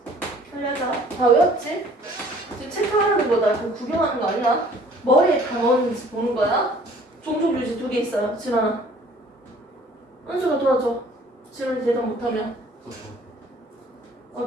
살려자. 다 외웠지? 지금 체크하는 거다. 그럼 구경하는 거 아니야? 머리에 다 넣었는지 보는 거야. 종족 유지 2개 있어요. 진원아. 은수가 도와줘. 진원이 대답 못하면.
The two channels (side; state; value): both; normal; correlation 0.54